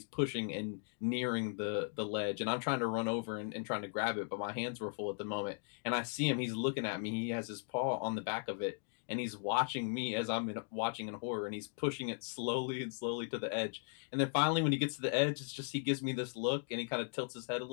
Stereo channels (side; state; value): right; silent; 53 dB below the other